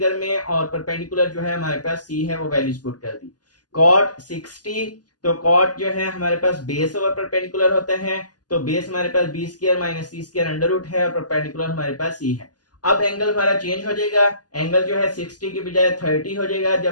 में, और परपेंडिकुलर जो है हमारे पास सी है, वो वैल्यूज पुट कर दी। कॉट 60, तो कॉट जो है हमारे पास बेस ओवर परपेंडिकुलर होते हैं, तो बेस हमारे पास B square minus C square under root है, और परपेंडिकुलर हमारे पास सी है। अब एंगल हमारा चेंज हो जाएगा, एंगल जो है 60 की बजाय 30 हो जाएगा।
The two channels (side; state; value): right; late; 0.69 ms